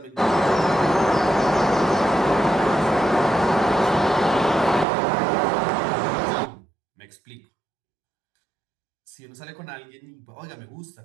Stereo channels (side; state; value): left; drops out; at 4.9 s